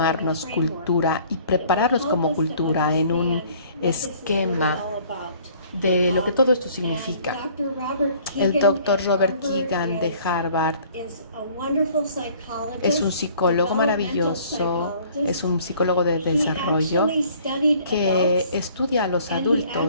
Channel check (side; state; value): both; inverted; correlation -0.55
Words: cultura y prepararnos como cultura en un esquema de lo que todo esto significa. El Dr. Robert Keegan de Harvard es un psicólogo maravilloso, es un psicólogo de desarrollo que estudia a los